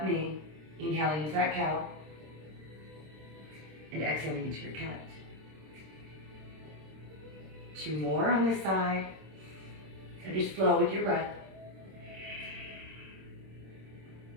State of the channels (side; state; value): left; late; 26 ms